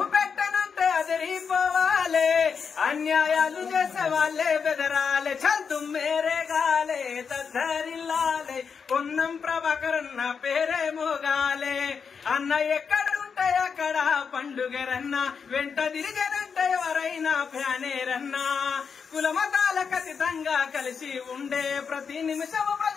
పెట్టనంటే అదిరిపోవాలే అన్యాయాలు చేసే వాళ్ళే బెదరాలే చల్ తుమ్మేరే గాలే దద్దరిల్లాలే పొన్నం ప్రభాకరన్న పేరే మోగాలే అన్న ఎక్కడుంటే అక్కడ పండుగరన్న వెంట తిరిగనంటే ఎవరైనా ఫ్యానేరన్నా కులమతాలకు అతీతంగా కలిసి ఉండే ప్రతి నిమిషము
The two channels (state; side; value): quieter; right; 6.1 dB